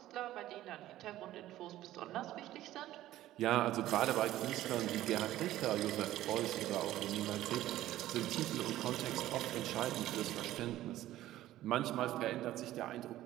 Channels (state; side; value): quieter; left; 14.3 dB